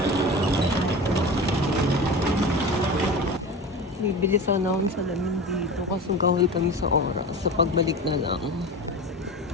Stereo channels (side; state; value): both; normal; correlation 0.30